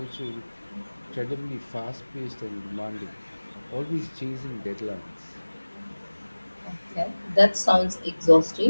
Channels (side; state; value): both; inverted; correlation -1.00